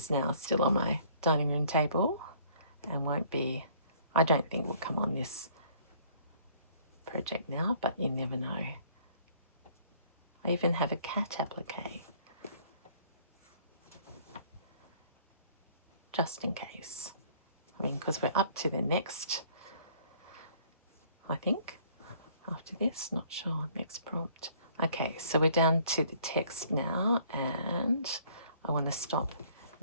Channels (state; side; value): inverted; both; correlation -0.58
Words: now still on my dining room table and won't be, I don't think will come on this project now, but you never know. I even have a cat applique, just in case. I mean, because we're up to the next, I think, after this, not sure, next prompt. Okay, so we're down to the text now, and I want to stop